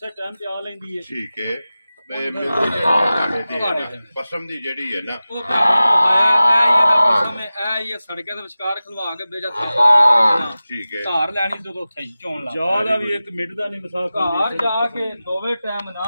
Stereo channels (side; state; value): both; inverted; correlation -0.96